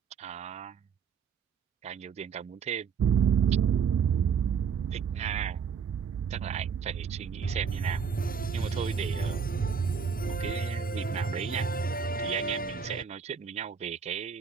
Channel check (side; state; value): left; quieter; 6.5 dB